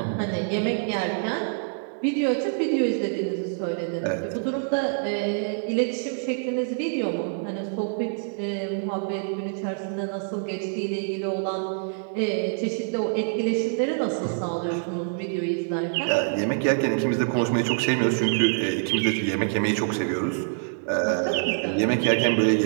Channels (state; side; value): silent; left; digital silence